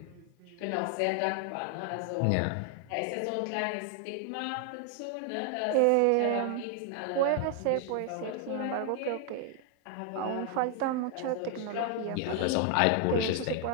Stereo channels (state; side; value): different; both; correlation 0.00